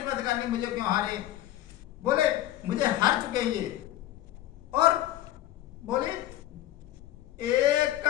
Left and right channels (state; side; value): quieter; right; 14.0 dB